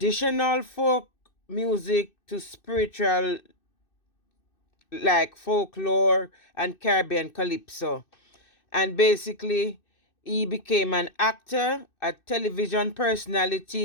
folk music to spiritual like folklore and Caribbean calypso. And basically, he became an actor, a television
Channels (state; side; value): late; right; 2.6 ms